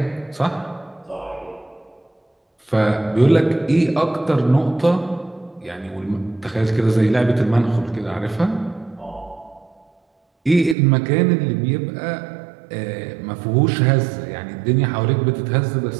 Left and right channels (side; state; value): left; drops out; at 10.8 s